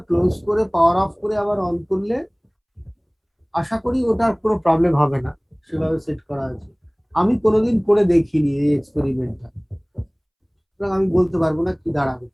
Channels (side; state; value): both; identical; correlation 1.00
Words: ক্লোজ করে পাওয়ার অফ করে আবার অন করলে আশা করি ওটার কোনো প্রবলেম হবে না, সেভাবে সেট করা আছে। আমি কোনোদিন করে দেখিনি এই এক্সপেরিমেন্টটা, সুতরাং আমি বলতে পারবো না কি দাঁড়াবে